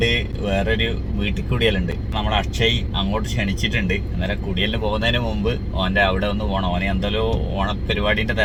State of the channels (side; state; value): both; identical; correlation 1.00